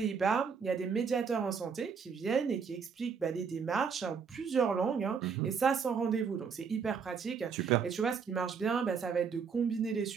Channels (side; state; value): left; quieter; 6.1 dB